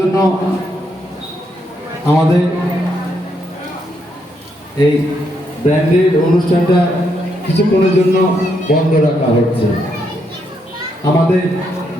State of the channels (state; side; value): normal; both; correlation 0.77